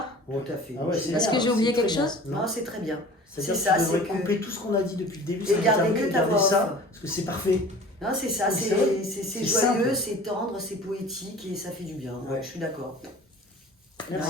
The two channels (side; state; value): both; normal; correlation 0.43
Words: Tout à fait. Ah ouais, c'est Est-ce bien, que j'ai oublié c'est très quelque bien. chose? Non, c'est très bien. C'est-à-dire C'est que ça, tu devrais c'est que- couper tout ce qu'on a dit depuis le début, Et garder que ta garder voix ça, off. parce que c'est parfait. Non, c'est ça, C'est c'est vrai. c'est C'est joyeux, simple. c'est tendre, c'est poétique et ça fait du bien. Ouais, Ouais. je suis d'accord. Merci.